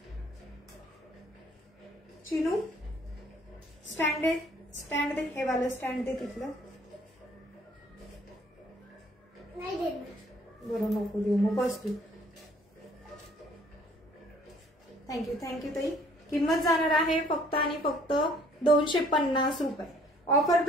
चिनू स्टँड दे. स्टँड दे. हे वाला स्टँड दे तिथलं. नाही देत. बरं नको देऊ मग बस तू. थँक्यू थँक्यू ताई. किंमत जाणार आहे फक्त आणि फक्त 250 रुपये. ऑफर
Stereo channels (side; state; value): both; normal; correlation 0.59